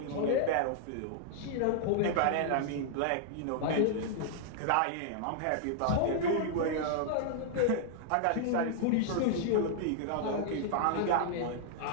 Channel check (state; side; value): different; both; correlation -0.01